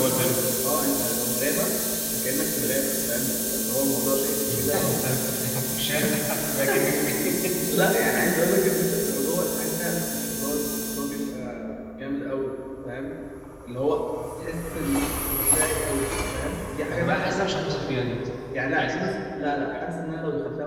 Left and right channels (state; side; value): identical; both; correlation 1.00